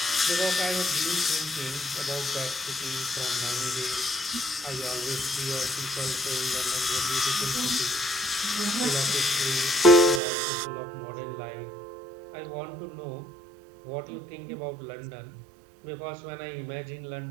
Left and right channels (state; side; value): drops out; left; at 10.2 s